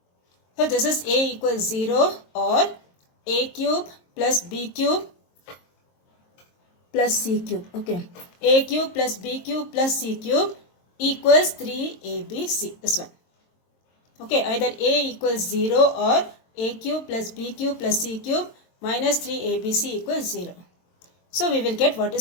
So, this is a equals 0 or a cube plus b cube plus c cube. Okay, a cube plus b cube plus c cube equals 3abc. This one. Okay, either a equals 0 or a cube plus b cube plus c cube minus 3abc equals 0. So, we will get what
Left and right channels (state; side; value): late; right; 22 ms